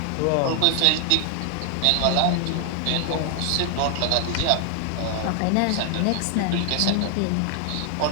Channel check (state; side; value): different; both; correlation 0.00